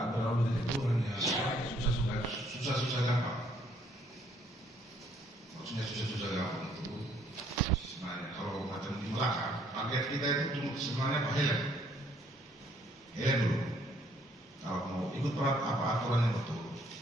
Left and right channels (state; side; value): normal; both; correlation 0.66